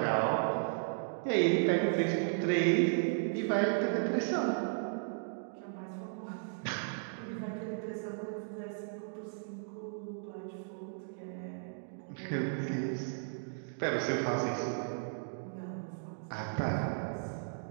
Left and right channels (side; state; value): left; silent; digital silence